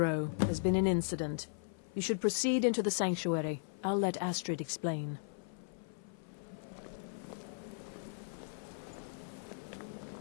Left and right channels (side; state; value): right; silent; 53 dB below the other